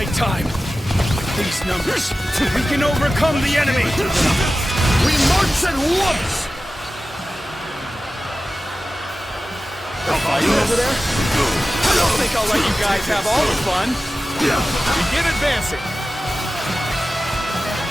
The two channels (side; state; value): both; normal; correlation 0.95